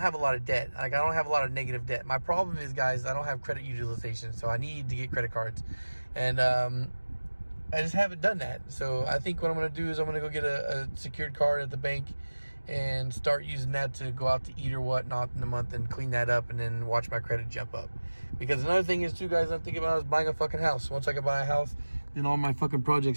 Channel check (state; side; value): inverted; both; correlation -1.00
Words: a lot of debt. I don't have a lot of negative debt. My problem is, guys, I don't have credit utilization, so I need to get credit cards, and I just haven't done that. So I think what I'm gonna do is I'm gonna go get a secured card at the bank and start using that to go out to eat or whatnot in a month, and clean that up, and then watch my credit jump up. Because another thing is too, guys, I'm thinking about is buying a fucking house. Once I can buy a house, then all my fucking